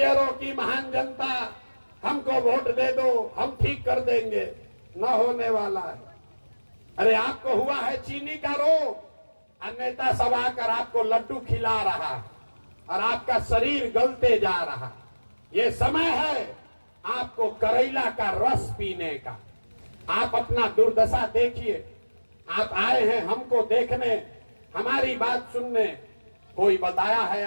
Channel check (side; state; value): both; inverted; correlation -1.00